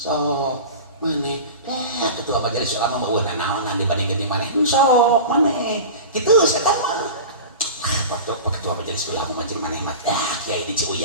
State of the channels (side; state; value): both; inverted; correlation -0.32